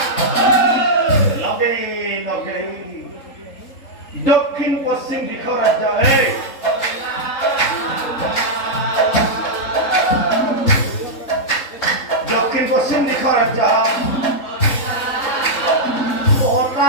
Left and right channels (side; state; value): right; late; 3.8 ms